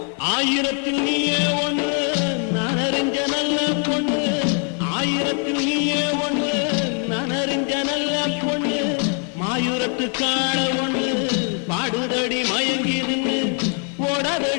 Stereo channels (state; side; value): quieter; right; 39.5 dB